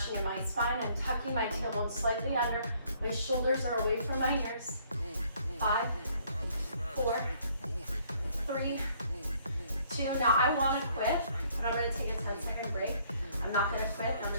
in my spine. I'm tucking my tailbone slightly under. My shoulders are away from my ears. 5, 4, 3, 2. Now I want to quit, but I'm going to take a 10-second break. I'm not going to quit. I'm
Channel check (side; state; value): both; inverted; correlation -0.63